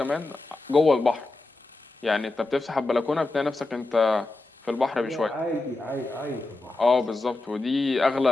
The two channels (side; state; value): right; quieter; 3.1 dB